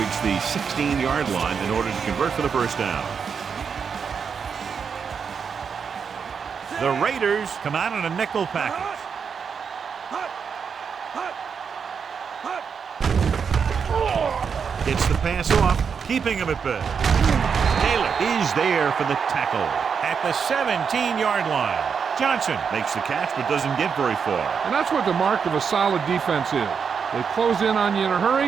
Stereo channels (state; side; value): quieter; left; 6.4 dB